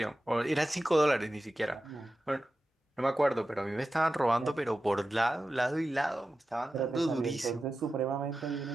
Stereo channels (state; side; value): normal; both; correlation 0.93